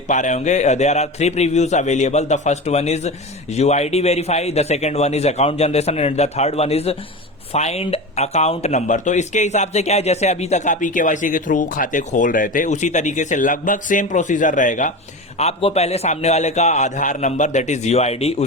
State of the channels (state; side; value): normal; both; correlation 0.26